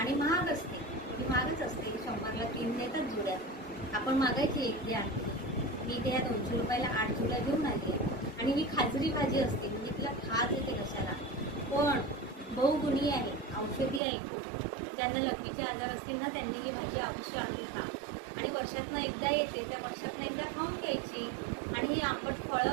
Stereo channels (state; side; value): drops out; left; at 14.0 s